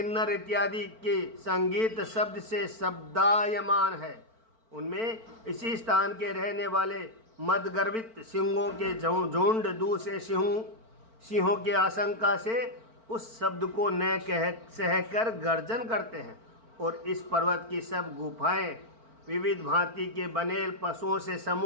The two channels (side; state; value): left; late; 4.4 ms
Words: इत्यादि के संगीत शब्द से शब्दायमान है, उनमें इसी स्थान के रहने वाले मदगर्वित सिंहों के झुंड दूसरे सिंहों की आशंका से उस शब्द को न कह सहकर गर्जन करते हैं। और इस पर्वत की सब गुफाएं विविध भांति के बनेल पशुओं से